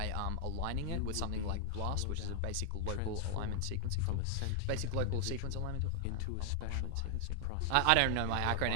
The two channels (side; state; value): both; different; correlation 0.00